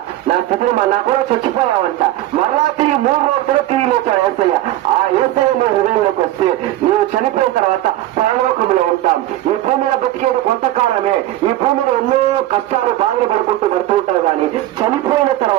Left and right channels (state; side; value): quieter; left; 14.7 dB